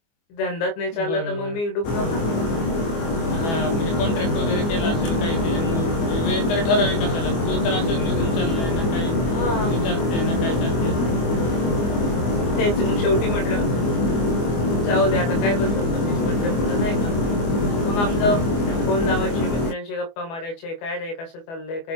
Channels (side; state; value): right; late; 24 ms